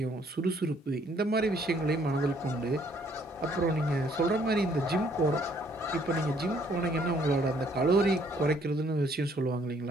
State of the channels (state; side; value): normal; both; correlation 0.64